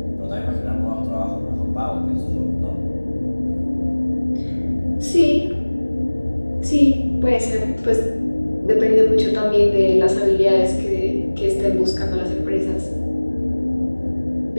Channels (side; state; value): both; inverted; correlation -1.00